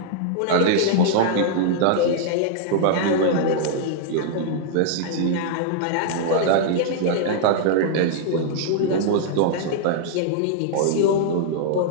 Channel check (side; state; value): both; different; correlation -0.01